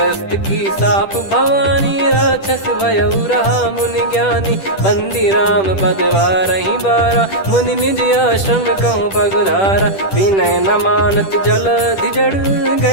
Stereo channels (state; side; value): late; right; 10 ms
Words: की साप भवानी, राक्षस भयउ रहा मुनि ज्ञानी। बंदी राम पद वारहि बारा, मुनि निज आश्रम कहूँ पगुधारा। विनय न मानत जलधि जड़,